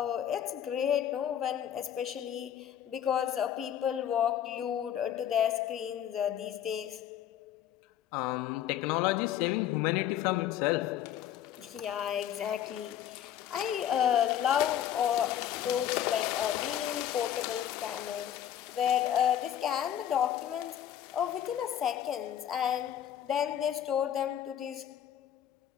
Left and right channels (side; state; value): right; quieter; 10.5 dB